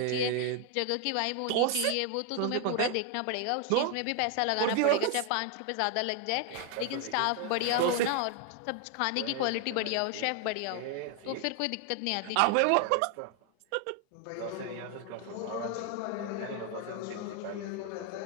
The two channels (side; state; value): both; different; correlation 0.00